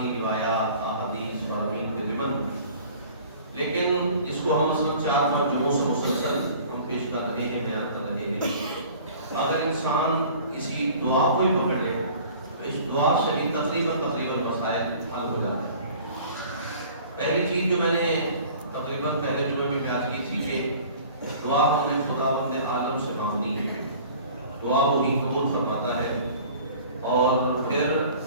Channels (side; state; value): both; inverted; correlation -0.47